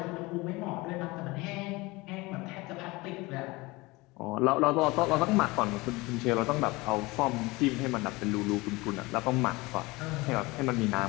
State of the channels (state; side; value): quieter; right; 22.7 dB